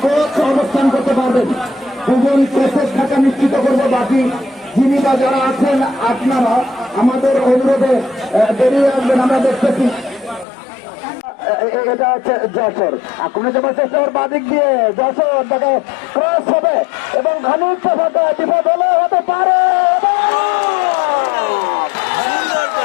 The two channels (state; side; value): drops out; right; at 10.5 s